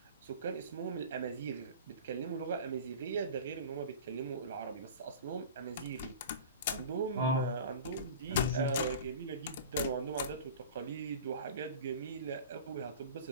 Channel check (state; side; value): inverted; both; correlation -0.36